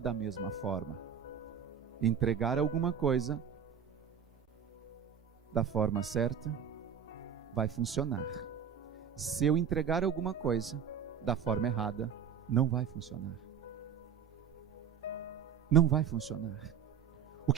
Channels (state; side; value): quieter; left; 7.6 dB